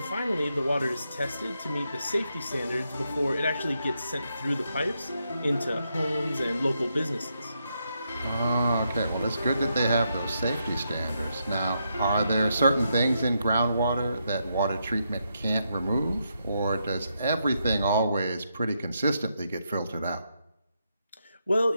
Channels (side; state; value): both; inverted; correlation -0.81